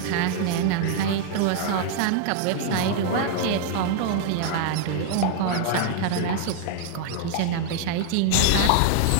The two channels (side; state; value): both; different; correlation 0.00